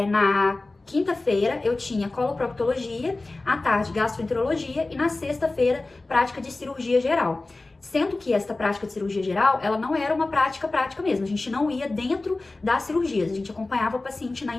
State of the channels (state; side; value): quieter; right; 3.2 dB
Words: na quinta-feira eu tinha coloproctologia, à tarde gastroenterologia e na sexta-feira prática de cirurgia geral. Sendo que esta prática de cirurgia geral, ela não era uma prática mesmo. A gente não ia dentro das cirurgias, a gente acompanhava o paciente na